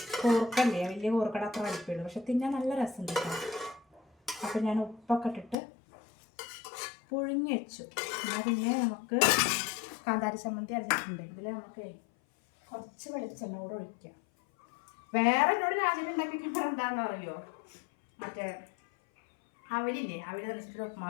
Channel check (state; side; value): drops out; right; at 5.6 s